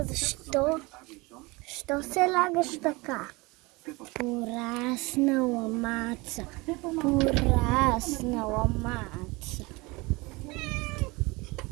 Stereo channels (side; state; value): left; quieter; 24.4 dB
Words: Защо? Що се лагаш така? Пораснала Маца. Пораснала Маца.